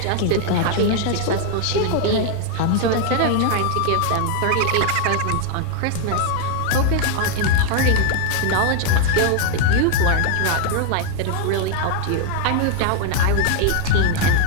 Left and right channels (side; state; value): both; different; correlation 0.00